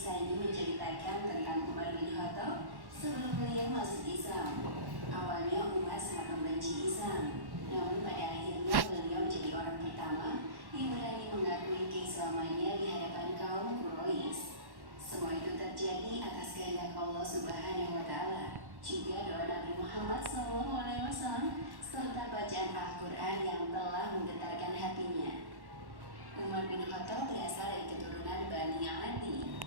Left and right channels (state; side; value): late; left; 1.1 ms